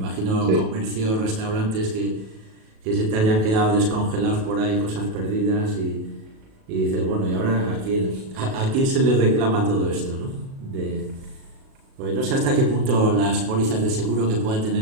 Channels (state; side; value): late; left; 37 ms